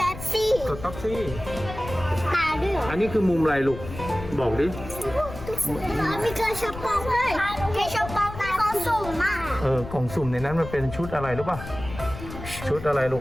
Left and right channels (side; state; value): left; noise; rumble, 11 dB below the sound